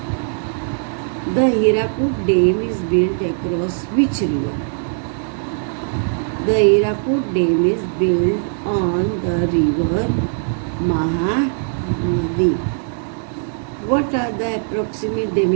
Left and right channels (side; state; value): left; silent; 66 dB below the other